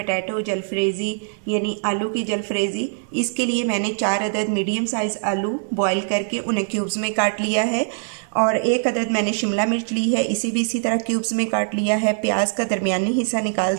जलफ्रेज़ी यानी आलू की जलफ्रेज़ी। इसके लिए मैंने 4 अदद मीडियम साइज़ आलू बॉईल करके उन्हें क्यूब्स में काट लिया है और 1 अदद मैंने शिमला मिर्च ली है, इसे भी इसी तरह क्यूब्स में काट लिया है। प्याज का दरमियानी हिस्सा निकाल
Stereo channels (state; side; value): silent; left; digital silence